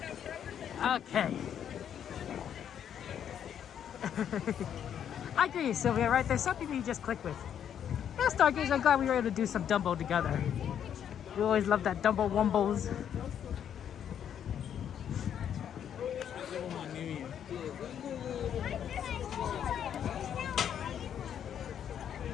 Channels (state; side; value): quieter; right; 9.1 dB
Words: Okay. I agree, Sylvia, right? There's some people you just click with. Yeah, Stargaze, I'm glad we were able to do some Dumbo together. We always love that Dumbo Wumbos.